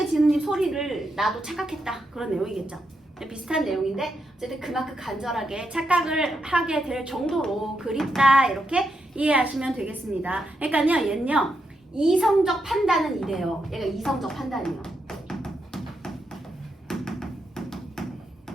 지는 잎 소리를 나도 착각했다, 그런 내용이겠죠. 비슷한 내용인데 어쨌든 그만큼 간절하게 착각을 하게 될 정도로 그립다, 이렇게 이해하시면 되겠습니다. 그러니까요, 얘는요, 이성적 판단은 이래요. 얘가 이성적 판단이에요.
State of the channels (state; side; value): normal; both; correlation 0.82